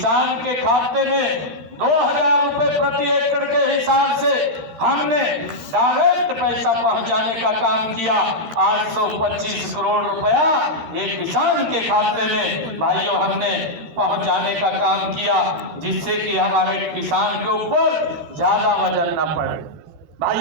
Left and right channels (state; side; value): late; left; 12 ms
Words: के खाते में 2,000 रुपए प्रति एकड़ के हिसाब से हमने डायरेक्ट पैसा पहुंचाने का काम किया। 825 करोड़ रुपया ये किसान के खाते में भाइयों हमने पहुंचाने का काम किया, जिससे कि हमारे किसान के ऊपर ज्यादा वजन न पड़े।